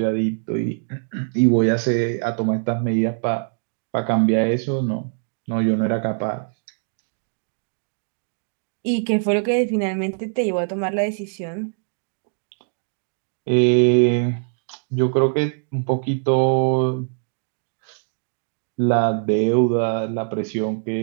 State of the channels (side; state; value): left; silent; digital silence